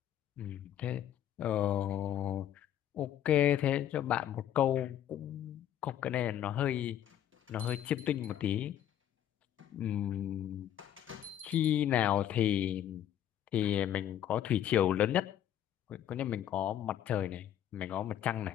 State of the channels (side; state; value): right; quieter; 11.0 dB